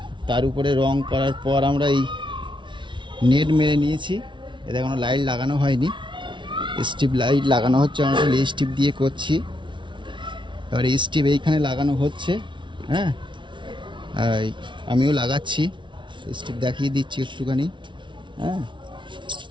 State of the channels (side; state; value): left; late; 0.24 ms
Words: তার উপরে রং করার পর আমরা এই নেট মেরে নিয়েছি। এতে কোনো লাইট লাগানো হয়নি, স্ট্রিপ লাইট লাগানো হচ্ছে। আমরা এই স্ট্রিপ দিয়ে করছি। এবার এই স্ট্রিপ এইখানে লাগানো হচ্ছে। হ্যাঁ, আমিও লাগাচ্ছি, স্ট্রিপ দেখিয়ে দিচ্ছি একটুখানি। হ্যাঁ,